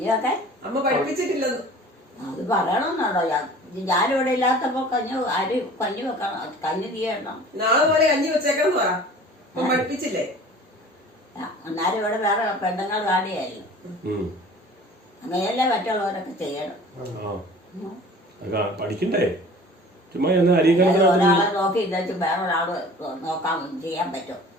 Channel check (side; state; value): both; normal; correlation 0.45